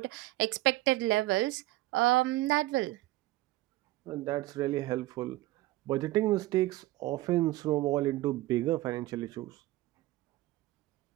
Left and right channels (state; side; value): quieter; left; 17.7 dB